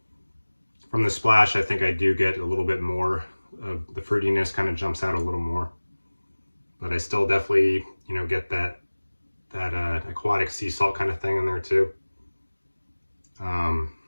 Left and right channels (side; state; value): both; inverted; correlation -1.00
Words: From the splash, I think I do get a little bit more of the fruitiness, kind of jumps out a little more. But I still definitely, you know, get that aquatic sea salt kind of thing in there too.